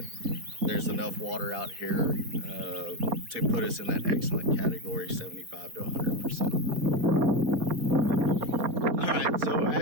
there's enough water out here to put us in that excellent category, 75 to 100%. All right, so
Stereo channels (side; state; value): left; late; 4.2 ms